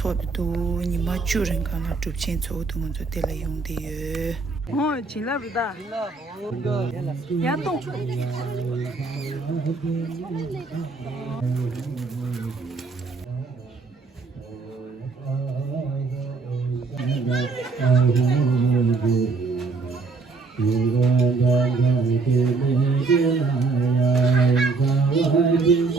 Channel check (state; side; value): quieter; left; 4.1 dB